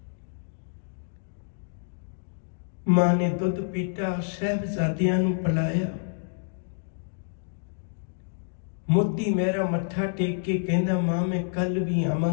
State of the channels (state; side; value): silent; right; digital silence